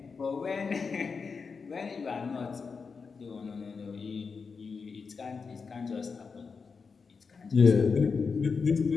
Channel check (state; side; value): quieter; right; 5.1 dB